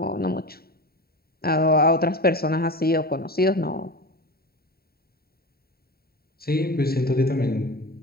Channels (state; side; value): late; right; 0.45 ms